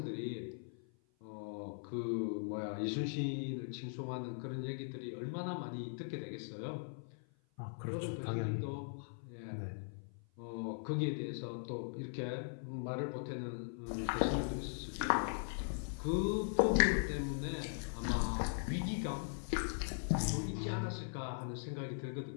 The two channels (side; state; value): right; silent; 51 dB below the other